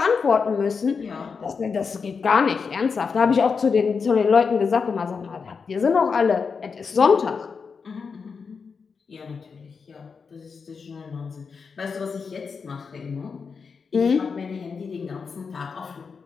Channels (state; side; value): quieter; right; 5.4 dB